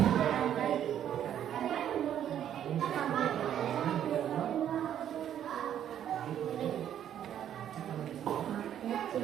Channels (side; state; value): left; quieter; 10.2 dB